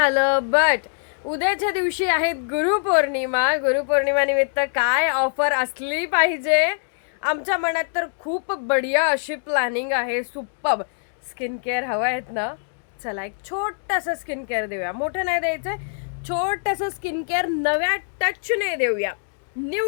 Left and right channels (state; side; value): silent; right; digital silence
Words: बट उद्याच्या दिवशी आहेत गुरुपौर्णिमा. गुरुपौर्णिमा निमित्त काय ऑफर असली पाहिजे. आमच्या मनात तर खूप बढिया अशी प्लॅनिंग आहे. सुपर्ब स्किन केअर हवं आहेत ना. चला एक छोटंसं स्किन केअर देऊया. मोठं नाही द्यायचं, छोटंसं स्किन केअर नव्या टचने देऊया,